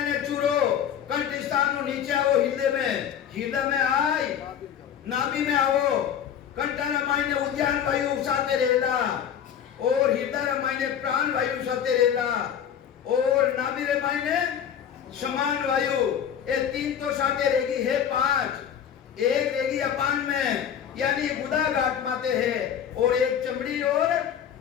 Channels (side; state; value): right; quieter; 8.9 dB